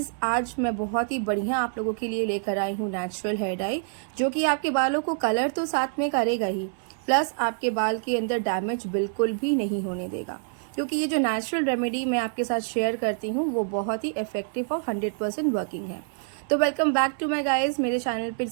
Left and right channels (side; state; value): left; silent; digital silence